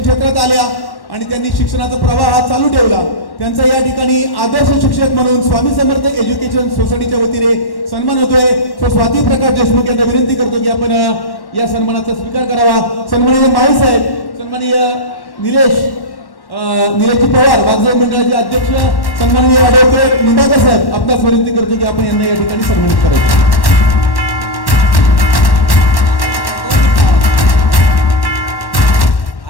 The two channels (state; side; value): late; right; 1.1 ms